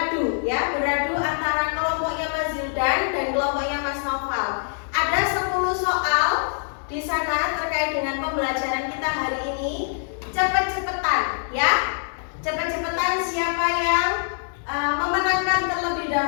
antara kelompoknya Mas Zildan dan kelompoknya Mas Noval. Ada 10 soal di sana terkait dengan pembelajaran kita hari ini. Cepet-cepetan ya. Cepet-cepetan siapa yang memenangkan terlebih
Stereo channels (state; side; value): silent; right; digital silence